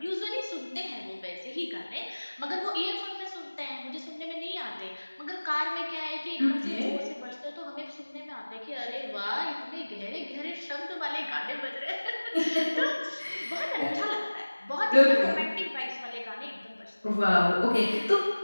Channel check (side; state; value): both; inverted; correlation -1.00